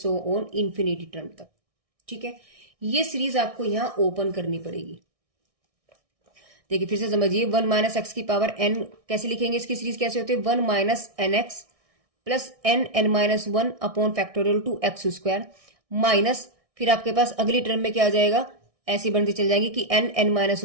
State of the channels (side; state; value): left; late; 1.6 ms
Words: on infinity term तक। ठीक है, ये सीरीज आपको यहां ओपन करनी पड़ेगी। देखिए फिर से समझिए, 1 माइनस एक्स की पावर एन कैसे लिखेंगे, इसकी सीरीज कैसे होती है, 1 minus n x plus n minus 1 upon factorial 2 x square minus फिर आपके पास अगली टर्म में क्या आ जाएगा, ऐसी बनती चल जाएंगी कि n minus